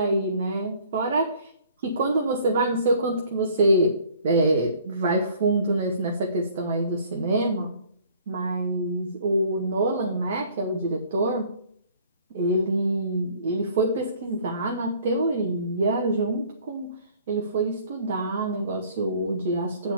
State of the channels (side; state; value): both; inverted; correlation -0.55